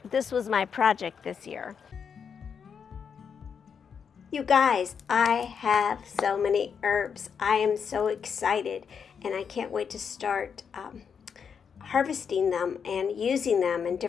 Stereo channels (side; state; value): right; quieter; 6.8 dB